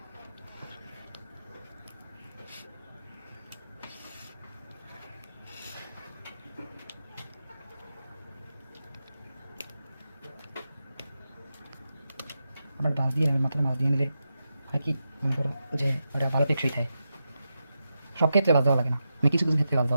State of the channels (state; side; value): inverted; both; correlation -0.88